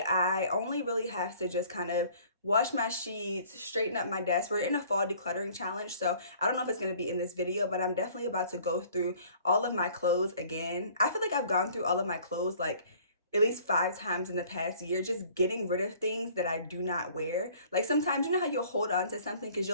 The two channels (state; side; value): inverted; both; correlation -0.54